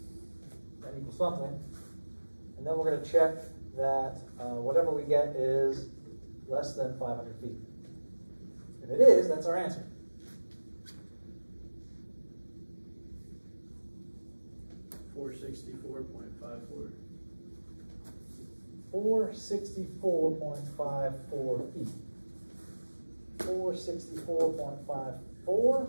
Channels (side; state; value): both; inverted; correlation -1.00